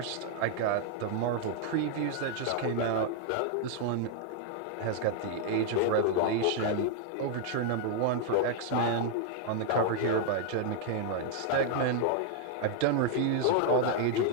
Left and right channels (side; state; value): both; different; correlation 0.00